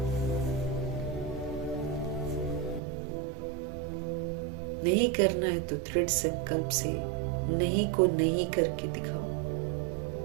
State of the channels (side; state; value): left; drops out; at 2.8 s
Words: नहीं करना है तो दृढ़ संकल्प से नहीं को नहीं करके दिखाओ।